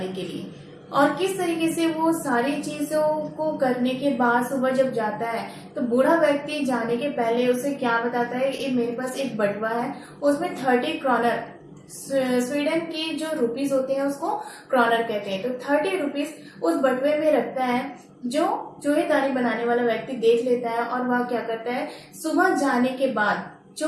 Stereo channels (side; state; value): both; identical; correlation 1.00